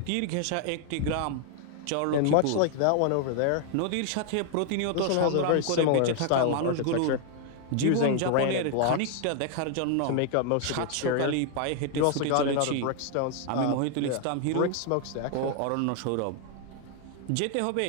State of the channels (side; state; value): both; different; correlation 0.00